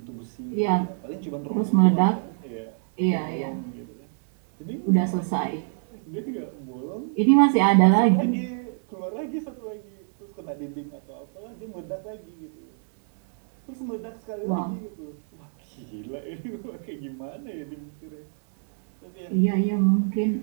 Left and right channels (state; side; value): silent; left; 61 dB below the other